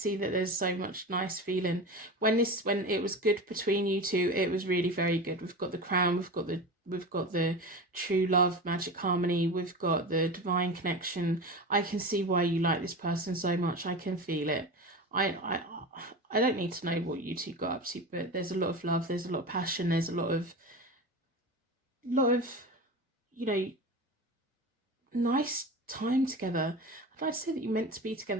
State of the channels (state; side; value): normal; both; correlation 0.28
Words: that there's so much nice feeling. When it was good between you two, it was really very good. We've got the crown, we've got the true love, magic harmony, we've got the divine connection. I can see why you like this person so much. I can feel it. I don't need to know what you two got up to, but there's a lot of love, there's a lot of passion, there's a lot of you know, nice time together. I like to say that you're meant to be